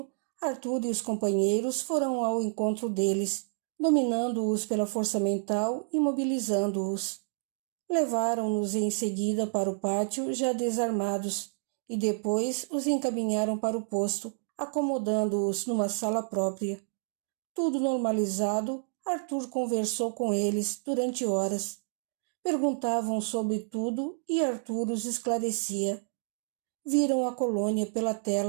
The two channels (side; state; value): left; silent; digital silence